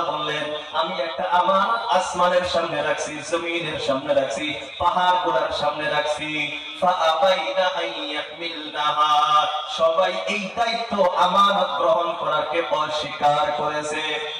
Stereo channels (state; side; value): identical; both; correlation 1.00